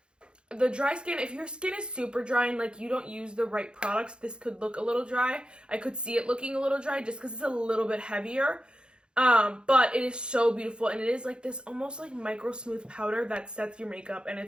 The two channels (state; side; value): late; left; 0.053 ms